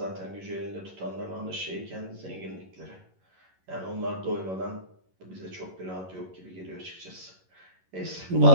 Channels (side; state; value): left; late; 11 ms